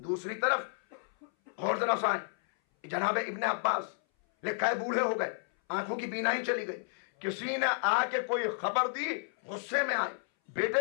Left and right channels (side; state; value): right; silent; 57 dB below the other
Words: طرف اور ذرا سائیں, جناب ابن عباس لکھا ہے بوڑھے ہو گئے, آنکھوں کی بینائی چلی گئی, کسی نے آ کے کوئی خبر دی, غصے میں آئے,